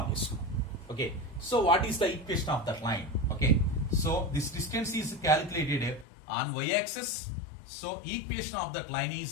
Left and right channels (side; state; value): right; drops out; at 6.1 s